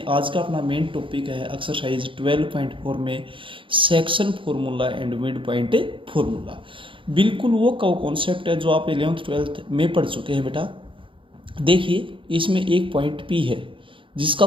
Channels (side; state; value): left; late; 0.25 ms